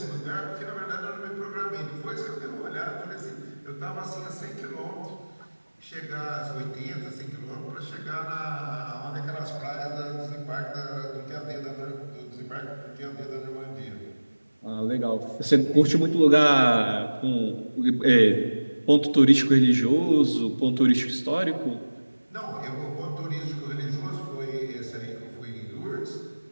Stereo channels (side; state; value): both; inverted; correlation -1.00